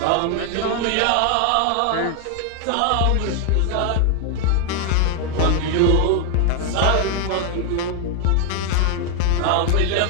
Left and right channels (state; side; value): different; both; correlation 0.00